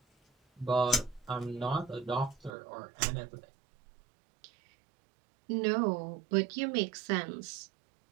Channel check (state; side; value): drops out; left; at 2.5 s